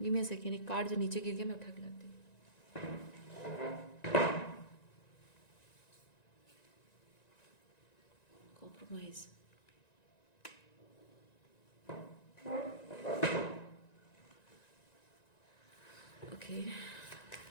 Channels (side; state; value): right; late; 1.9 ms